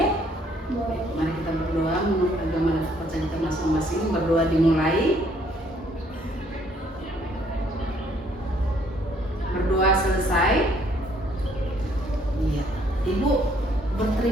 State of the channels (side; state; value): both; normal; correlation 0.65